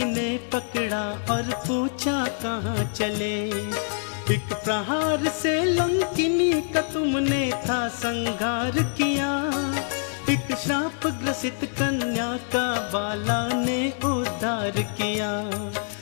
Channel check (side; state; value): right; silent; digital silence